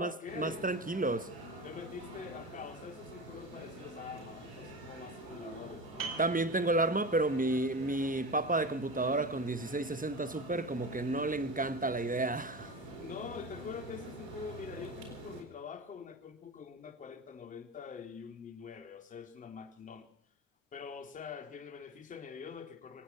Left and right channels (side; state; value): both; normal; correlation 0.28